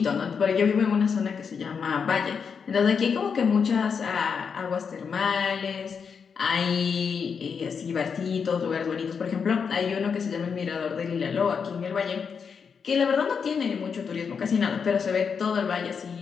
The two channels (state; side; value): quieter; right; 6.2 dB